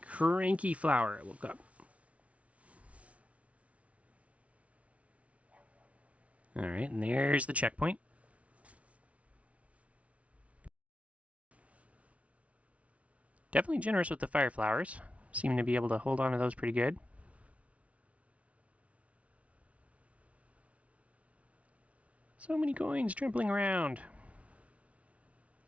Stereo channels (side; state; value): left; late; 0.064 ms